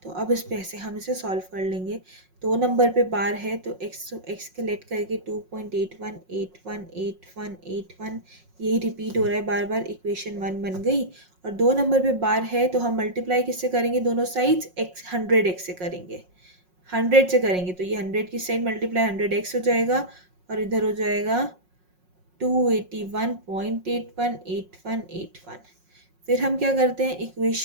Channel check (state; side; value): late; left; 5.5 ms